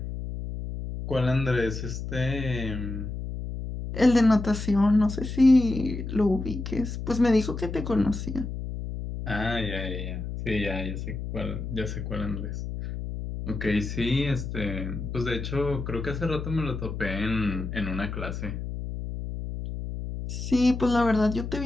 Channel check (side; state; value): left; noise; hum, 6 dB below the sound